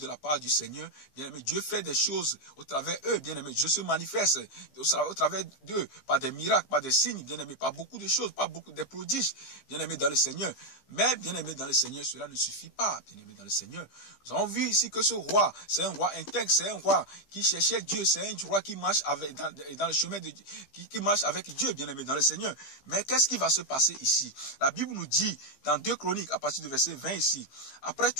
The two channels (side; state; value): right; late; 15 ms